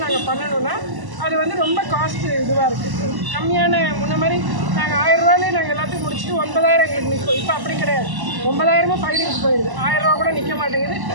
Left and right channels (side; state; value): left; late; 1.0 ms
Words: நாங்கள் பண்ணணும்னா அது வந்து ரொம்ப காஸ்ட் இதுவாக இருக்குது. கம்மியான முன்ன மாதிரி நாங்கள் 1000 ரூபாயிலே நாங்கள் எல்லாத்தையும் முடிச்சுட்டு 9,000 எங்களுக்கு நிற்கும். இப்போ அப்படி கிடையாது. 9,000 ஃபைலிங்ஸ் போயிடுது. 1000 ரூபா கூட நிற்க மாட்டேங்குது.